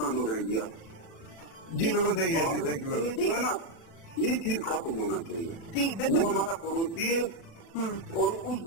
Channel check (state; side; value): late; right; 37 ms